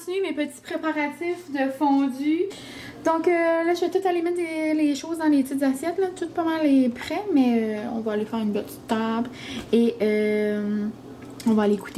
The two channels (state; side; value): identical; both; correlation 1.00